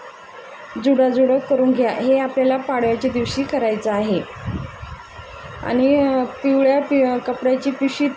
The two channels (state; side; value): identical; both; correlation 1.00